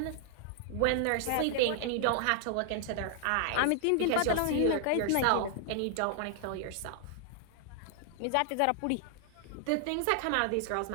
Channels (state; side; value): different; both; correlation 0.00